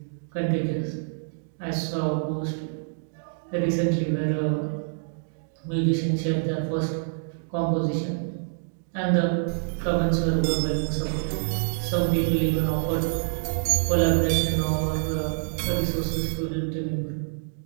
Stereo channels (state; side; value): silent; left; digital silence